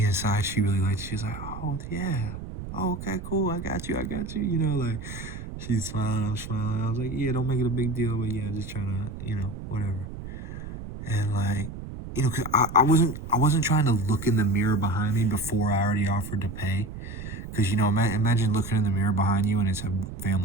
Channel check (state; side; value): noise; right; rumble, 10 dB below the sound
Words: inside, she really liked it. She's like, oh, yeah. Oh, okay, cool. I got you. Like, she's smiling. I'm smiling. I was like, yeah, don't make it a big deal. But yeah, just trying to, whatever. And like, cause I wasn't trying to look in the mirror behind me before I already offered to pay. Because, imagine looking in the mirror behind you and it's a